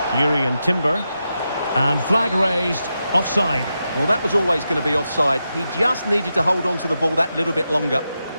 Yuri and Timber. And flag raised, offside. Well, that was always going to be offside. He just needed to hold on to the ball that little bit longer.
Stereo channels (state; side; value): inverted; both; correlation -0.88